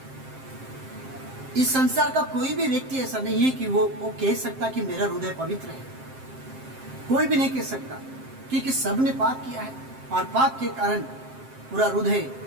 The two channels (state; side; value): late; left; 7.6 ms